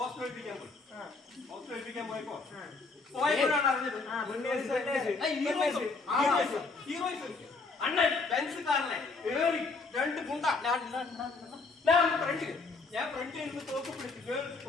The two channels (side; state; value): right; quieter; 4.0 dB